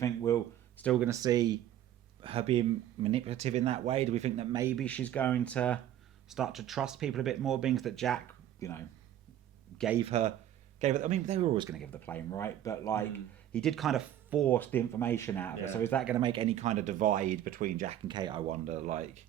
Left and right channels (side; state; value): left; quieter; 11.6 dB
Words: we're still going to see her being manipulative in that way? Do we think that maybe she's going to start to trust people a bit more, being that Jack, gave her gave it. I mean, they were always going to give the plane, right? But like, he did kind of force the information out of it. So is that going to make any kind of divide between Jack and Kate? I wonder. Like,